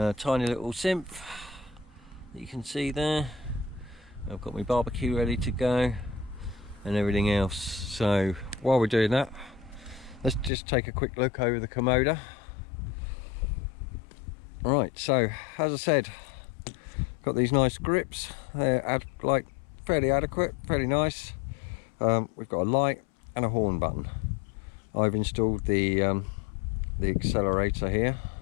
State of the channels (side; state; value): right; drops out; at 10.5 s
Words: little synth that you can see there. I've got my barbecue ready to go and everything else. So while we're doing that, let's just take a quick look over the Kommoda. Right, so as I said, got these nice grips. They're like fairly adequate, fairly nice. We've got a light and a horn button. I've installed the accelerator here,